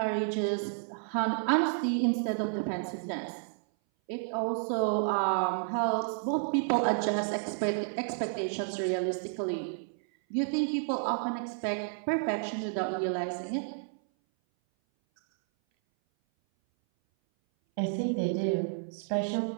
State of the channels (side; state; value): left; silent; 57 dB below the other